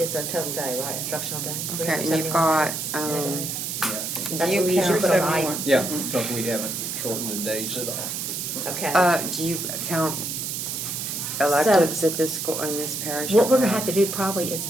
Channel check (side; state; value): right; noise; hiss, 4 dB below the sound